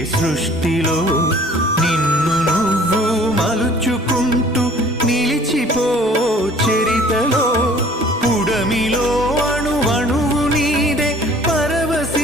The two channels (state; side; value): normal; both; correlation 0.52